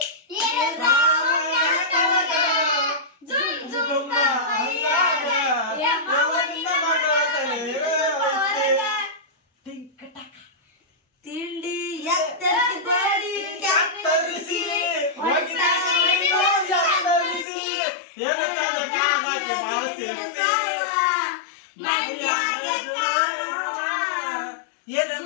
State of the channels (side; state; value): right; drops out; at 17.4 s